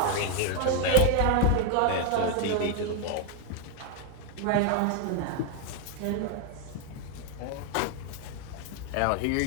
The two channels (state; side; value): different; both; correlation 0.01